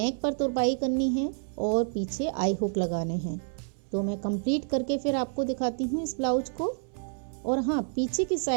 पर तुरपाई करनी है और पीछे आई हुक लगाने हैं। तो मैं कंप्लीट करके फिर आपको दिखाती हूँ इस ब्लाउज को। और हाँ, पीछे की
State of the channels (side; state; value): left; silent; 59 dB below the other